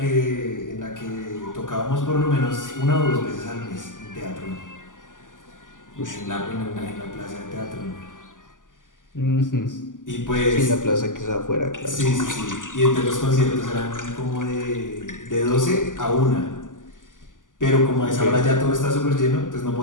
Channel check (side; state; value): right; late; 0.88 ms